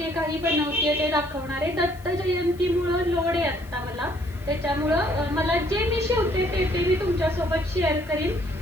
काही बनवते ते दाखवणार आहे. दत्त जयंतीमुळं लोड आहे आता मला, त्याच्यामुळं मला जे मी शिवते ते मी तुमच्यासोबत शेअर करीन.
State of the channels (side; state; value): left; noise; hiss, 26 dB below the sound